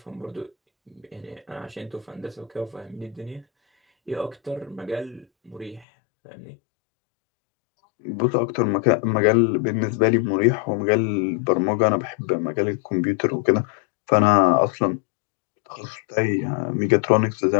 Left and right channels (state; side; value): drops out; right; at 5.9 s